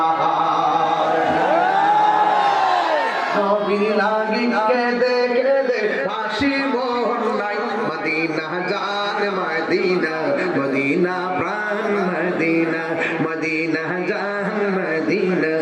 নবী লাগি কেঁদে কেঁদে হাসি মোর নাই মদিনা জান মদিনা মদিনা প্রাণ মদিনা মদিনা জান মদিনা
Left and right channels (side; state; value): both; identical; correlation 1.00